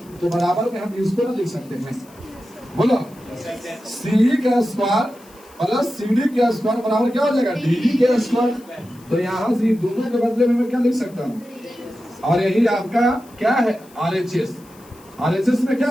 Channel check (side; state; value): left; noise; hiss, 26 dB below the sound